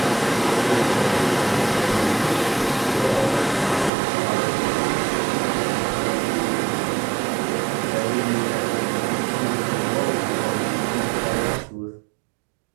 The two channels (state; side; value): drops out; left; at 3.9 s